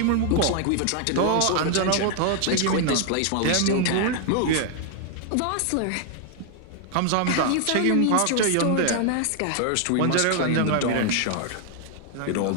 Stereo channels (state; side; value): different; both; correlation 0.00